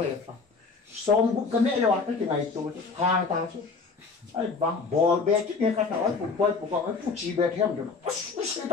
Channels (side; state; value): right; quieter; 4.5 dB